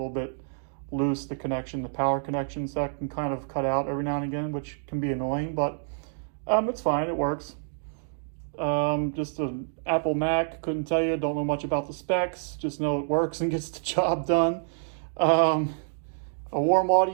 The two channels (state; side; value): silent; left; digital silence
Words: bit loose, the power connection, so that can kind of cut out every now and again, which can be annoying, but it's fine, it works. Just an Apple Mac, couldn't tell you, don't know much about the specs, just know it works and gets the job done. A warm